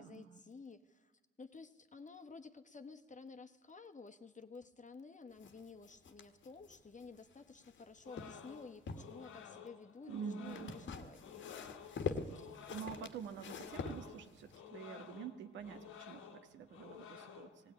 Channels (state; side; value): normal; both; correlation 0.37